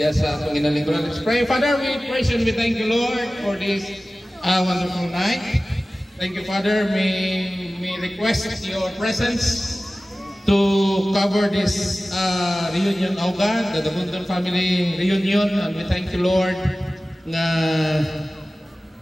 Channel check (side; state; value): both; normal; correlation 0.96